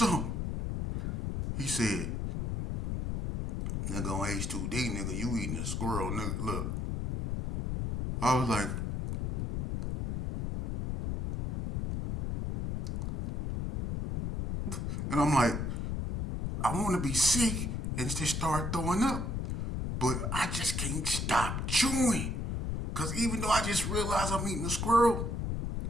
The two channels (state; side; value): noise; left; rumble, 2 dB below the sound